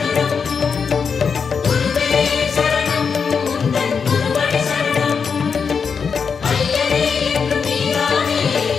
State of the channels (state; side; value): quieter; right; 6.0 dB